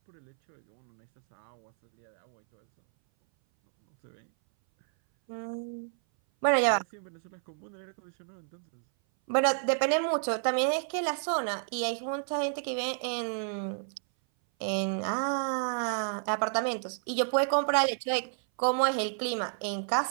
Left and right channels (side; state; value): left; silent; 58 dB below the other